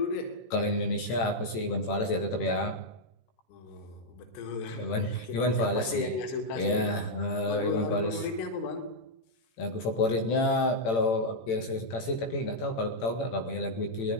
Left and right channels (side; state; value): right; late; 18 ms